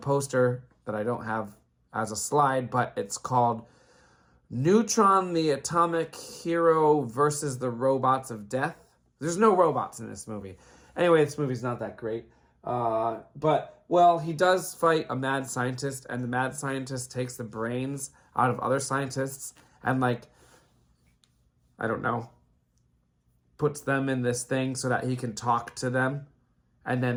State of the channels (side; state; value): both; identical; correlation 1.00